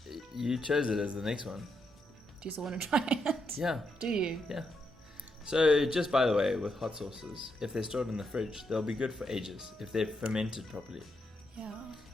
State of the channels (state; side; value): normal; both; correlation 0.80